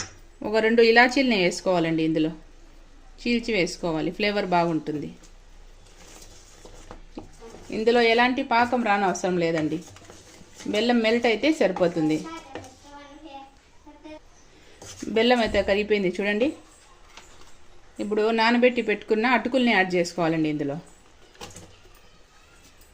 ఒక 2 ఇలాచీలని వేసుకోవాలండి. ఇందులో చీల్చి వేసుకోవాలి, ఫ్లేవర్ బాగుంటుంది. ఇందులో ఎలాంటి పాకం రానవసరం లేదండి. బెల్లం మెల్ట్ అయితే సరిపోతుంది. బెల్లం అయితే కరిగిపోయింది చూడండి. ఇప్పుడు నానబెట్టి పెట్టుకున్న అటుకుల్ని యాడ్ చేసుకోవాలండి ఇందులో.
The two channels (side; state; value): both; identical; correlation 1.00